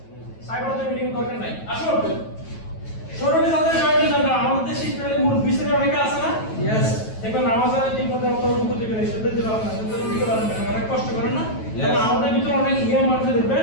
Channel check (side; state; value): right; late; 9.2 ms